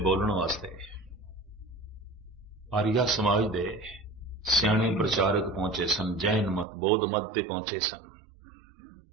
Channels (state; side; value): drops out; left; at 6.7 s